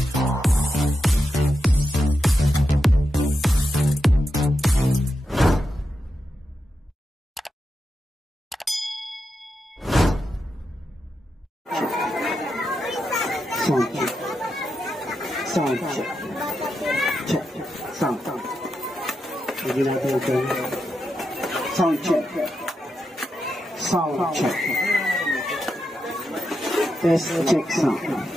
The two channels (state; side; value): normal; both; correlation 0.87